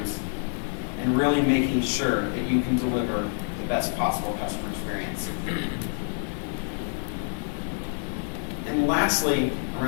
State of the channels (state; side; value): silent; right; 57 dB below the other